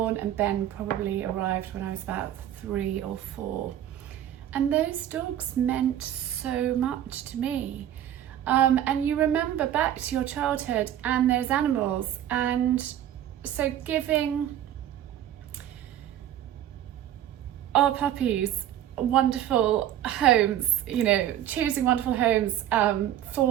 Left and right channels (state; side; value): quieter; left; 11.4 dB